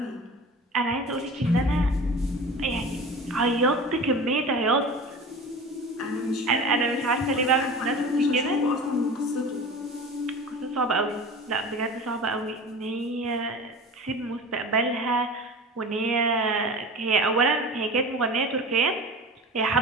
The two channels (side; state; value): both; normal; correlation 0.35